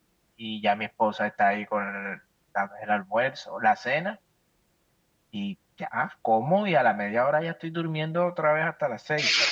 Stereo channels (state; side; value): identical; both; correlation 1.00